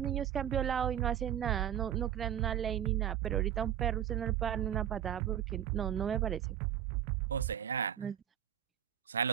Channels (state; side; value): quieter; left; 10.3 dB